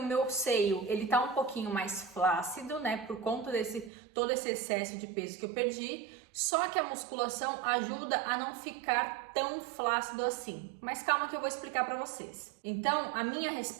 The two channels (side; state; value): left; drops out; at 3.9 s